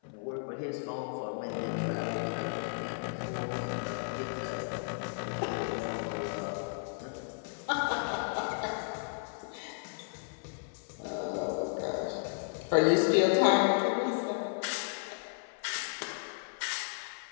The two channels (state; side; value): silent; right; 55 dB below the other